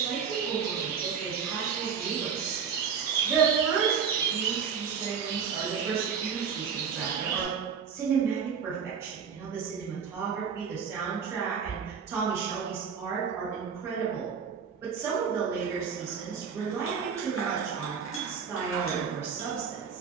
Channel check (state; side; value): quieter; left; 6.7 dB